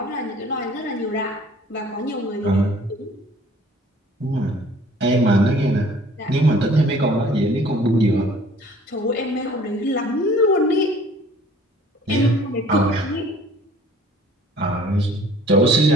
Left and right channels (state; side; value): normal; both; correlation 0.52